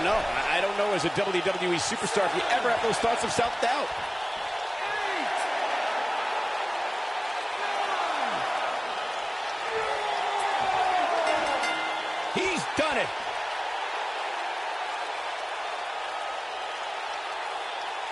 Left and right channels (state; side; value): identical; both; correlation 1.00